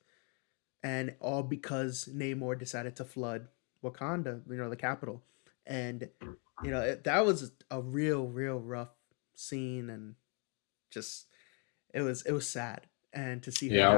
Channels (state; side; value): quieter; right; 37.0 dB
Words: and all because Namor decided to flood Wakanda, the capital, and that was a real rough scene, and just it was sad, and to see her Yeah, I